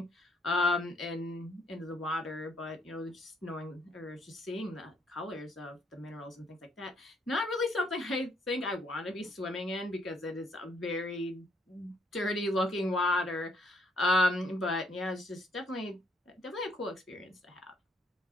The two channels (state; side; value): normal; both; correlation 0.69